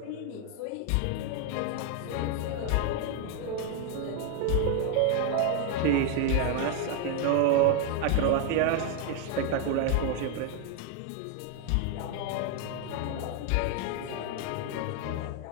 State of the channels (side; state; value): both; different; correlation 0.00